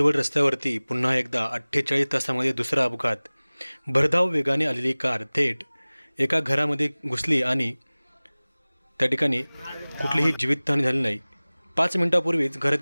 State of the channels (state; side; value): inverted; both; correlation -1.00